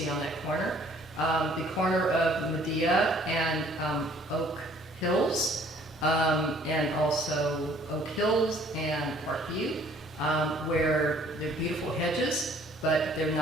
on that corner. The corner of Medea and Oak Hills, and also Oak Hills and Parkview, where they're beautiful hedges, but they're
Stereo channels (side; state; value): both; normal; correlation 0.57